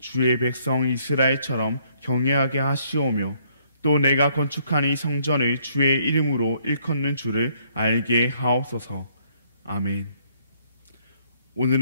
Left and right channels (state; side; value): inverted; both; correlation -0.67